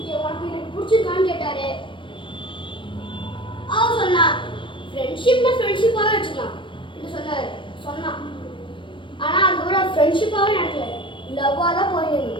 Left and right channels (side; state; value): right; late; 0.24 ms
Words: உனக்கு எனக்கு பிடிச்சிருக்கான்னு கேட்டாரு. அவர் சொன்னா ஃப்ரெண்ட்ஷிப்னா ஃப்ரெண்ட்ஷிப்பாகவே வச்சுக்கலாம் சொன்னான். ஆனால் அதுக்கப்புறம் ஃப்ரெண்ட்ஷிப்பாகவே நடக்கல, லவ்வாக தான்